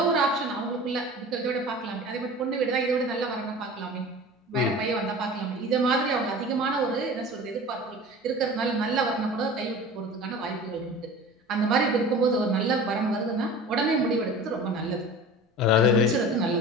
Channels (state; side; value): normal; both; correlation 0.38